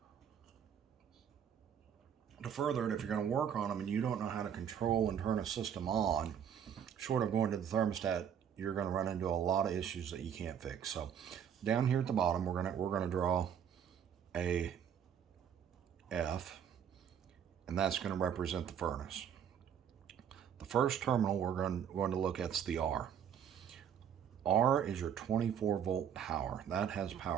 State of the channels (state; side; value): quieter; left; 8.5 dB